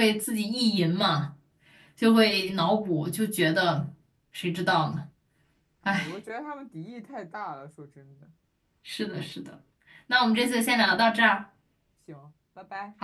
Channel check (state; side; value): identical; both; correlation 1.00